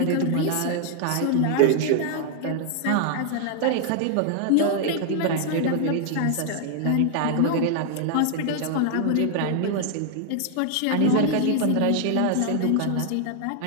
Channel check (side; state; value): both; different; correlation 0.00